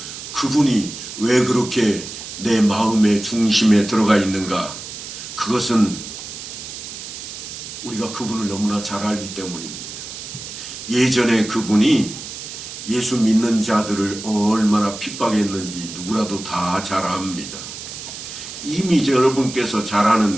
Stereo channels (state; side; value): noise; right; hiss, 10 dB below the sound